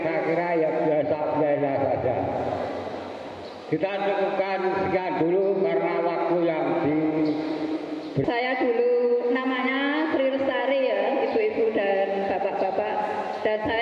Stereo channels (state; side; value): identical; both; correlation 1.00